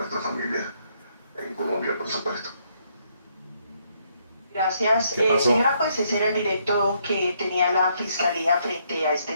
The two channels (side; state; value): both; inverted; correlation -0.73